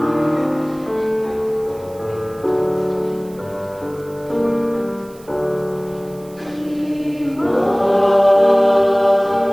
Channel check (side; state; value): right; noise; hiss, 25 dB below the sound